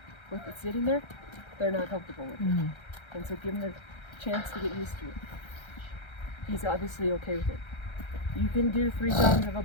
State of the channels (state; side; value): late; right; 1.3 ms